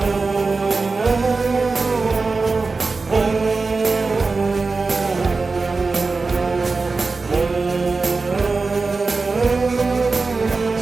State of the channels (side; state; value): left; quieter; 4.0 dB